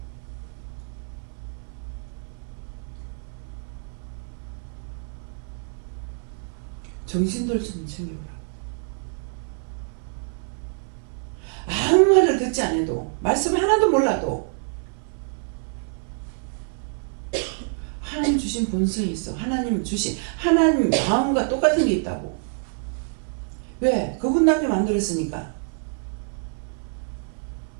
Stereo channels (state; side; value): silent; left; 57 dB below the other